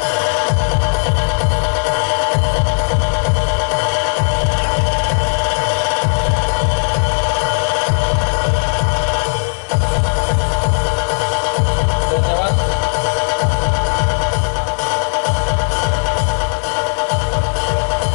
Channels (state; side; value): silent; right; 56 dB below the other